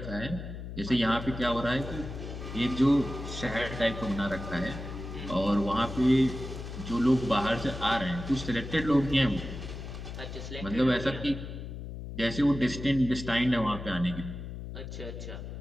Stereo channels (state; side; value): noise; left; hum, 9 dB below the sound